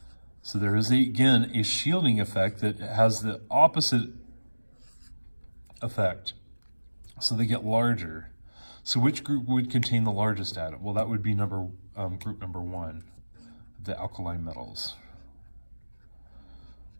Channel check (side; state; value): both; inverted; correlation -1.00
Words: So there is, again, a shielding effect that has the opposite effect. So they get larger. So which group would contain the largest atom? Well, that would be group number 1, the alkali metals.